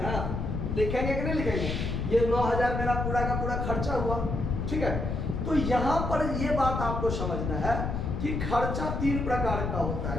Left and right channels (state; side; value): noise; left; rumble, 2 dB below the sound